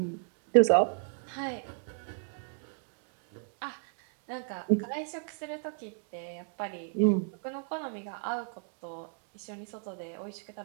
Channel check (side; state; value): left; silent; 55 dB below the other